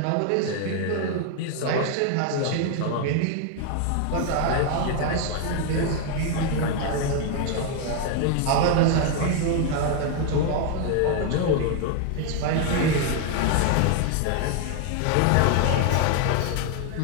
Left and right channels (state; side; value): different; both; correlation 0.00